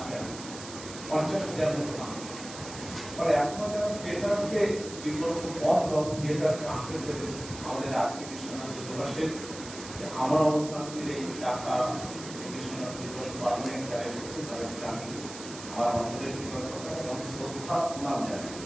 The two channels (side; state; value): right; noise; hiss, 12 dB below the sound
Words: ৫০,০০০ মতো মানুষ। ফলে এখনো যারা থিয়েটারকে বিকল্প পথ এবং থিয়েটারকে আঁকড়ে ধরে আমাদের আজকে বিশ্বনাথ দিবসের আমার অবস্থানের এই টাকা বিশ্বনাথ দিবস পালনের যারা এসেছে তাদেরকে আমি আমার অন্তরের কৃতজ্ঞতা এবং শ্রদ্ধা প্রণাম জানাই।